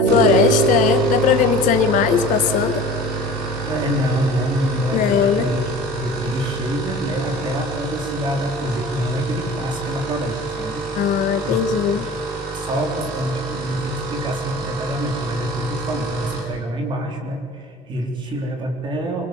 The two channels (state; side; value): normal; both; correlation 0.40